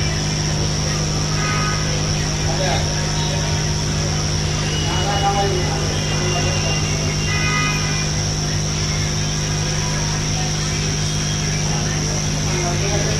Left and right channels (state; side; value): identical; both; correlation 1.00